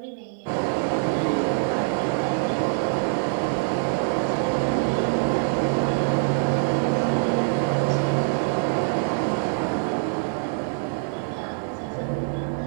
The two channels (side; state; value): left; silent; 60 dB below the other